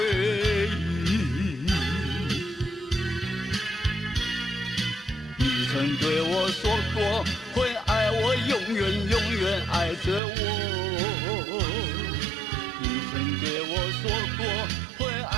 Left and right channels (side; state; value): left; drops out; at 10.2 s